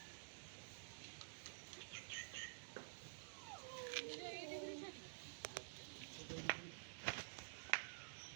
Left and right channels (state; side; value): silent; left; digital silence